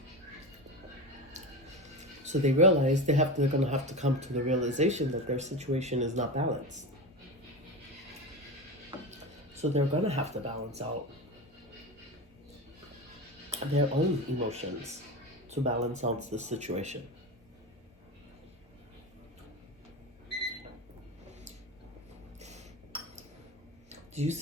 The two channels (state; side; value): normal; both; correlation 0.24